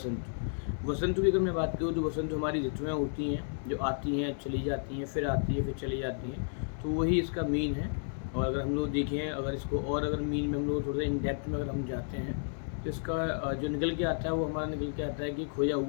वसंत की अगर मैं बात करूँ तो वसंत हमारी ऋतुएँ होती हैं जो आती हैं, चली जाती हैं, फिर आती है, फिर चली जाती हैं। तो वही इसका मीन है। और अगर हम लोग देखें, अगर इसको और अगर मीन में हम लोग थोड़ा सा इन डेप्थ में अगर हम जाते हैं, तो इसका जो निकल के आता है वो हमारा निकल के आता है कि खोया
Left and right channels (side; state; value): right; silent; digital silence